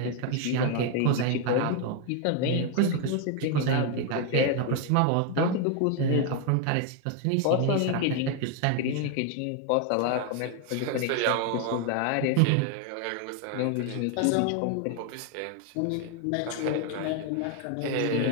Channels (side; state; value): both; different; correlation 0.01